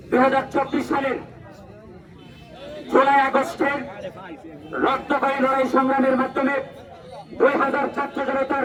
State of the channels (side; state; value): both; identical; correlation 1.00